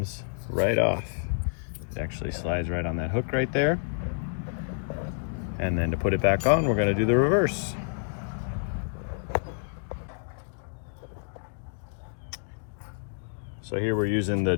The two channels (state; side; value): silent; right; digital silence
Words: right off. It actually slides right on that hook right there. And then to put it back on, we're gonna do the reverse. So here we're using the